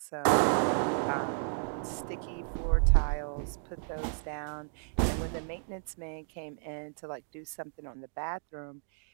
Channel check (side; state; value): left; silent; 56 dB below the other